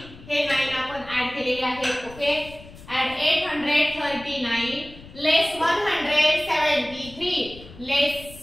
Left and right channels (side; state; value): left; noise; rumble, 18 dB below the sound